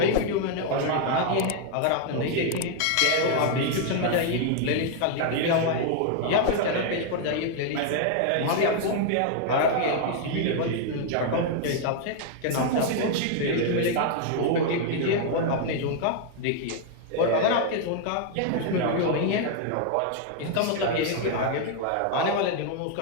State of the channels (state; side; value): different; both; correlation 0.00